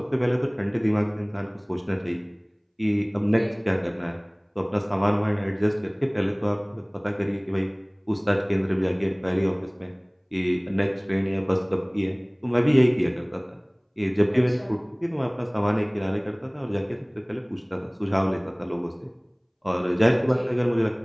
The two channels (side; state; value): both; identical; correlation 1.00